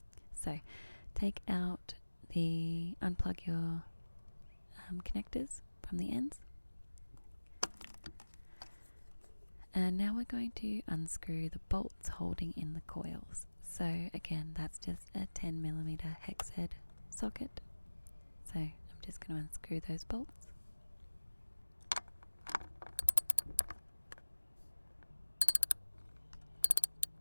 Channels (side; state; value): both; inverted; correlation -1.00